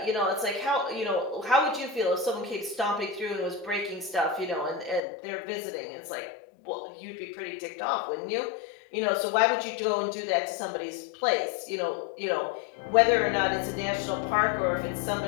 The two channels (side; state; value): right; drops out; at 5.0 s